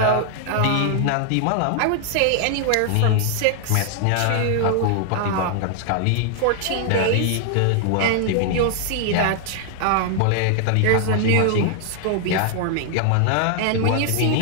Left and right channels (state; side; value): different; both; correlation 0.00